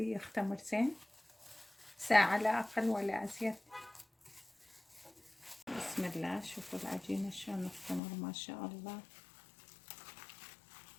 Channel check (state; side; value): drops out; right; at 8.0 s